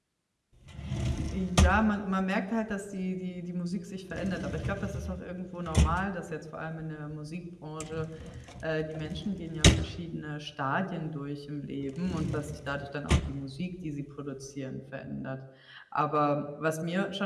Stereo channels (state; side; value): identical; both; correlation 1.00